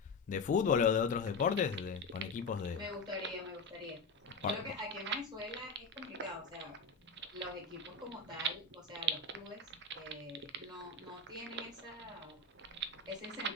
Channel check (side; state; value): right; quieter; 3.6 dB